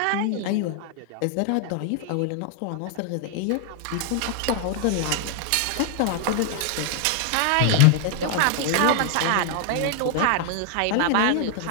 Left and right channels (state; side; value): different; both; correlation 0.00